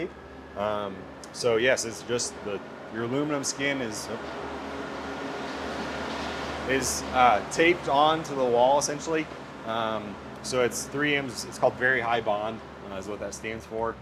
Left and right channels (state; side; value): identical; both; correlation 1.00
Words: So yes, it's just your aluminum skin is taped onto the wall essentially. So it's 3M's, it's called very high bond is what that stands for.